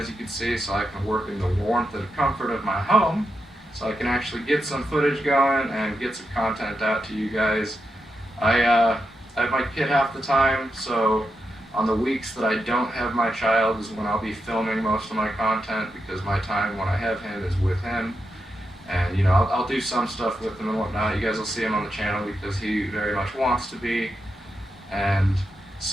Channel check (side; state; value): both; normal; correlation 0.86